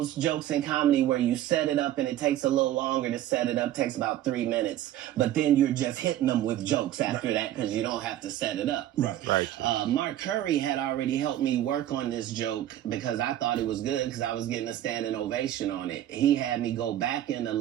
jokes in comedy where you set it up and it takes a little longer to set it up, takes about 3 minutes, but then you're just hitting them with jokes after that because you don't have to set it up. Right. Mark Curry had already helped me work on this joke because I thought it was good because I was getting a standing ovation on it. He had me go back in the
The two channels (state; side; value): quieter; left; 12.7 dB